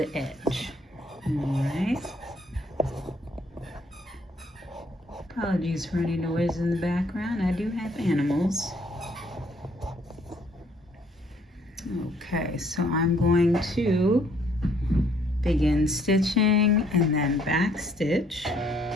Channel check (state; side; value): normal; both; correlation 0.65